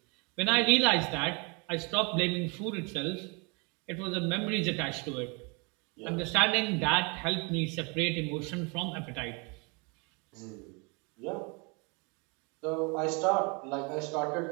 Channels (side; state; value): left; quieter; 31.5 dB